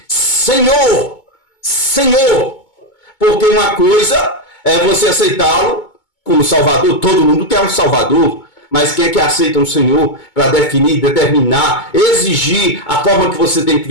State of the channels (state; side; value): late; right; 2.2 ms